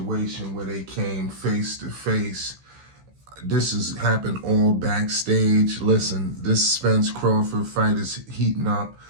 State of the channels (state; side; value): late; left; 15 ms